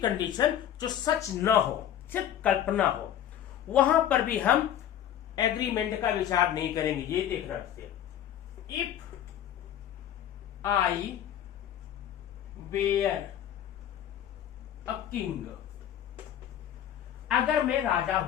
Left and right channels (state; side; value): quieter; right; 10.6 dB